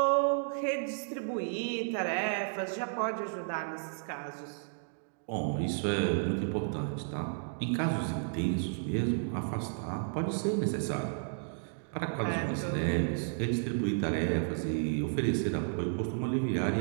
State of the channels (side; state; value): left; silent; digital silence